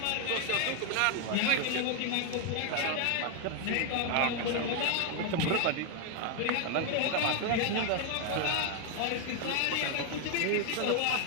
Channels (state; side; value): different; both; correlation 0.00